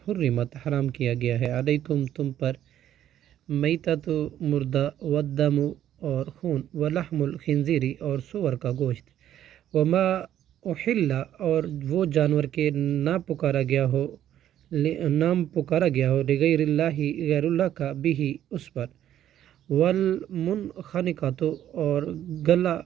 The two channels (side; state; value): left; quieter; 11.3 dB